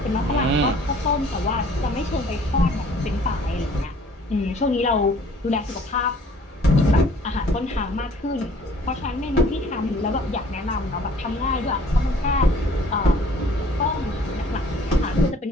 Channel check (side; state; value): both; normal; correlation 0.54